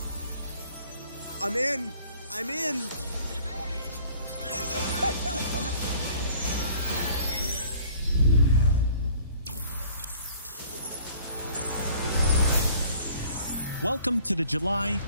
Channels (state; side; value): inverted; both; correlation -0.53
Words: I'm in. I'm in. Welcome to the July